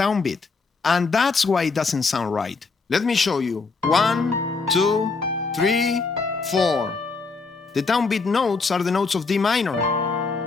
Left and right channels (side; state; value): right; quieter; 4.4 dB